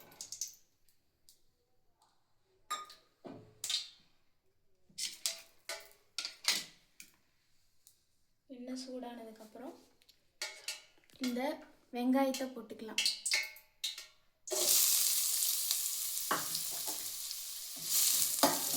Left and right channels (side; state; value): both; identical; correlation 1.00